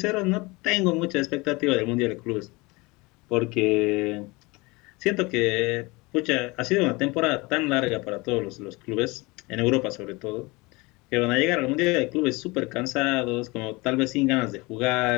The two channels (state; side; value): quieter; right; 24.4 dB